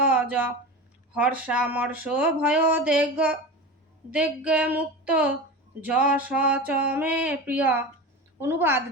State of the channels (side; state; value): both; normal; correlation 0.28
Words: হর্ষামর্ষ ভয় দেগ্গে মুক্ত যশ চ মে প্রিয়। অনুবাদ: